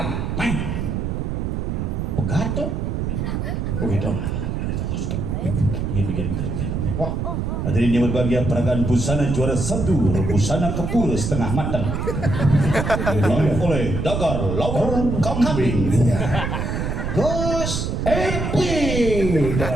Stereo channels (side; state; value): right; noise; rumble, 1 dB below the sound